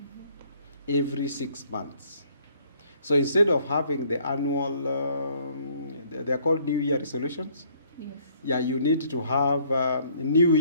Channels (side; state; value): both; inverted; correlation -0.62